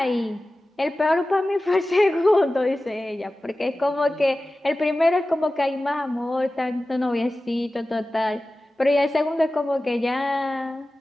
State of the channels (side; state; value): both; normal; correlation 0.96